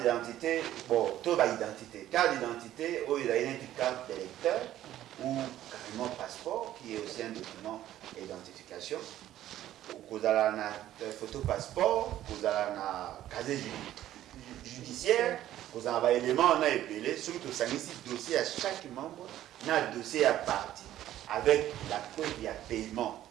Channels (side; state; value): left; quieter; 12.9 dB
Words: bon, tout va identité. Carte d'identité, il y a une carte d'électeur ou carrément passeport qui est aussi un document d'identification. Vous avez une photo passeport, vous avez un casier judiciaire, vous avez un élément, on a épelé, surtout ça un dossier à chaque membre, on a un dossier à partie avec la preuve il y a paiement.